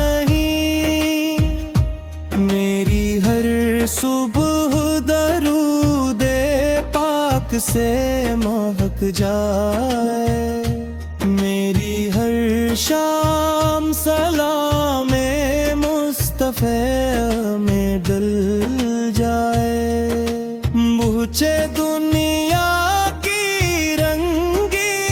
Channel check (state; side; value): identical; both; correlation 1.00